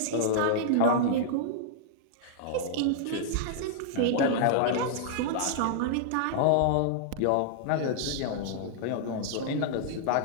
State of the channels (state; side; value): different; both; correlation -0.01